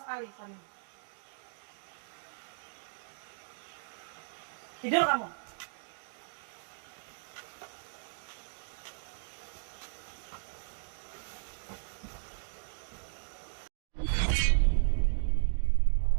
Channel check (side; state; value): left; silent; digital silence